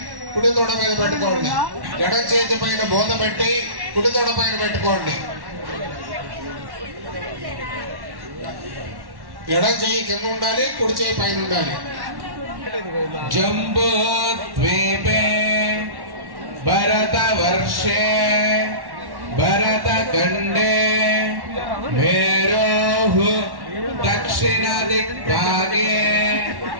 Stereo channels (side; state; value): left; late; 1.1 ms